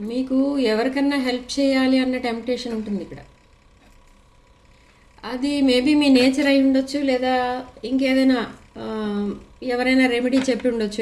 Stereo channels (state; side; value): identical; both; correlation 1.00